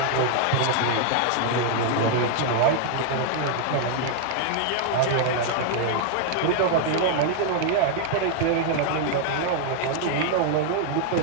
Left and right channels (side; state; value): both; different; correlation 0.00